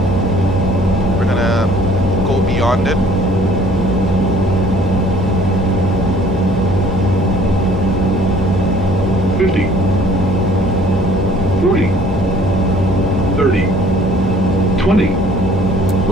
We're gonna go beyond it. $50, 40, 30, 20.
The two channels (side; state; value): both; normal; correlation 0.55